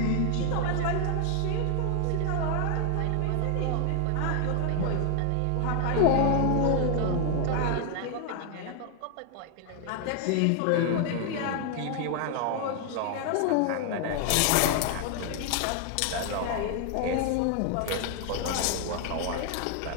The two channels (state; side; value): different; both; correlation 0.00